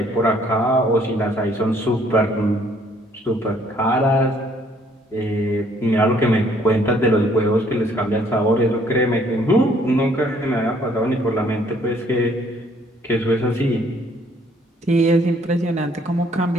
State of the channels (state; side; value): normal; both; correlation 0.63